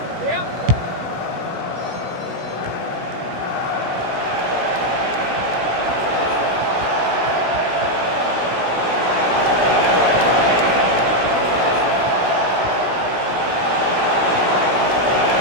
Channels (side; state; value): left; late; 16 ms